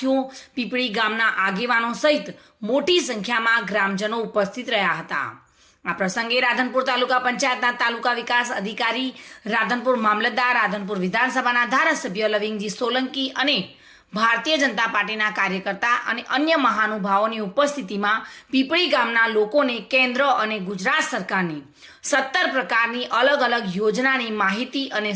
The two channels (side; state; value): both; identical; correlation 1.00